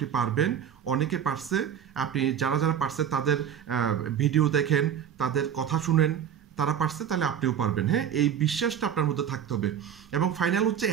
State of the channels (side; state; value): left; quieter; 8.8 dB